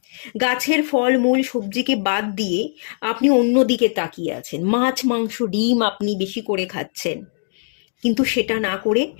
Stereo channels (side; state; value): right; silent; digital silence